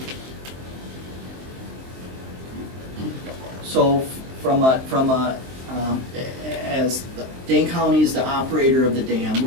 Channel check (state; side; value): late; left; 23 ms